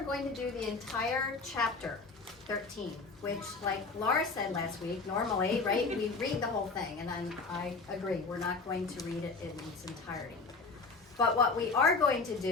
going to do the entire chapter 13, which, like Laura said last week, normally, right, we read the whole thing, and I agree, we're not going to read it in its entirety. But what we are going to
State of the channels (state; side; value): quieter; right; 4.1 dB